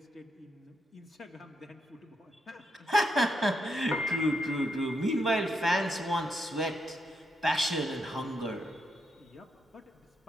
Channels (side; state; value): both; normal; correlation 0.81